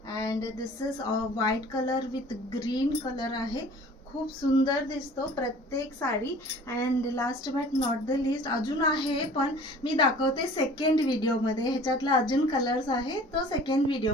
and this is white color with green color आहे. खूप सुंदर दिसतो प्रत्येक sari. And last but not the list अजून आहे, पण मी दाखवते सेकंड व्हिडिओमध्ये. ह्याच्यातला अजून कलर्स आहे तो सेकंड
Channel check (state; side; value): normal; both; correlation 0.47